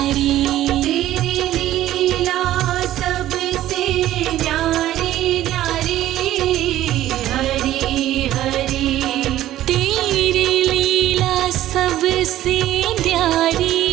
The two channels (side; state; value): left; quieter; 13.6 dB